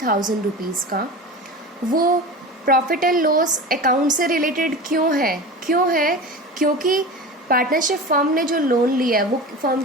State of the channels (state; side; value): normal; both; correlation 0.31